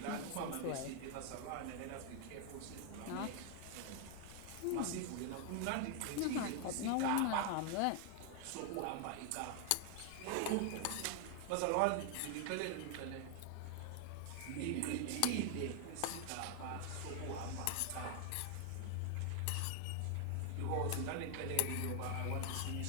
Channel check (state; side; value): different; both; correlation 0.00